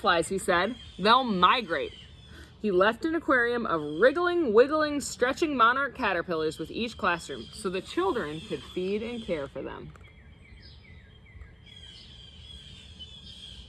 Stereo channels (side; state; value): both; identical; correlation 1.00